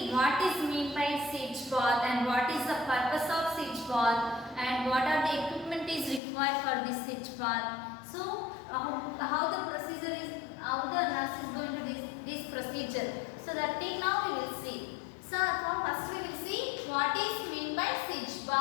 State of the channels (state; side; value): drops out; right; at 6.2 s